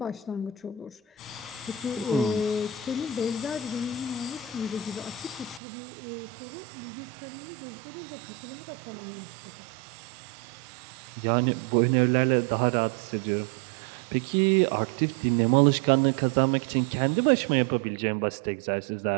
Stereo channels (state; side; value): drops out; left; at 5.6 s